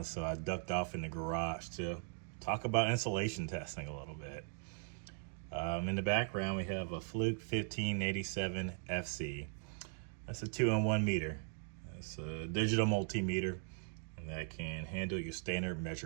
so I ducked off in the garage to talk about insulation testing a little bit. In the background, we have a Fluke 1587 FC. That's a 2-in-1 meter. It's a digital multimeter that can handle your standard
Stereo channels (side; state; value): left; silent; 52 dB below the other